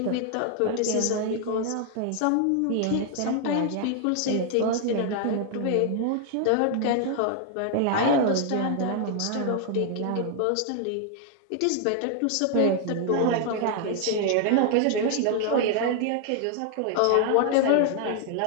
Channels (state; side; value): different; both; correlation 0.00